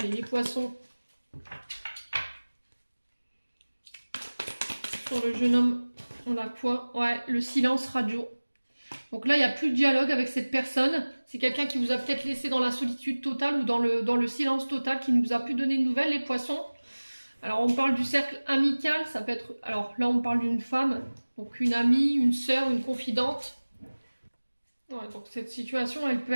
les poissons. Sur le jeune homme, on a quoi? Ouais, le silence radio. Donc là, il n'y a plus de dialogue avec cette personne. C'est quelqu'un qui vous a peut-être laissé dans la solitude totale ou dans le silence total, qui ne vous a plus donné de nouvelles, les poissons. Alors, on parle du cercle amical. Ça peut être... Alors là, on parle d'une femme. Donc, une amie, une sœur, une confidente. Ouais, donc, cette situation, elle peut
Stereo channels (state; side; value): inverted; both; correlation -1.00